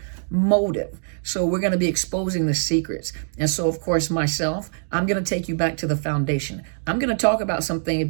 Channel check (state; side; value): silent; left; digital silence